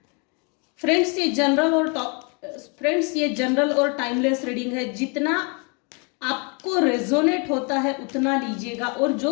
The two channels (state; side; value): quieter; right; 34.1 dB